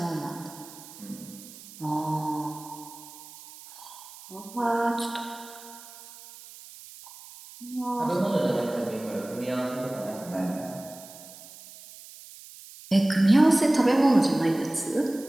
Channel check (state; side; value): noise; right; hiss, 18 dB below the sound